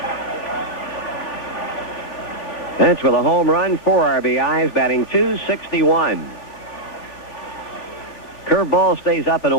Bench with a home run, 4 RBIs, batting .261. Curveball stays up and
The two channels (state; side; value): late; right; 3.4 ms